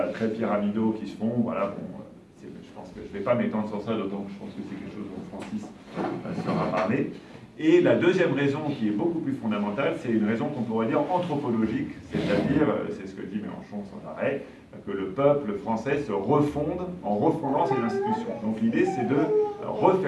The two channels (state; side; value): identical; both; correlation 1.00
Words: très pyramidaux qui se font. Voilà, bon, je pense que je ne vais pas m'étendre sur ça, d'autant que je pense que c'est quelque chose dont Francis saura parler. Et la deuxième raison, qui est beaucoup plus fondamentale, c'est une raison qu'on pourrait dire anthropologique, c'est-à-dire, c'est ce que dit Mélenchon sans arrêt, que le peuple français se refonde en refondant ses institutions. Donc l'idée, c'est de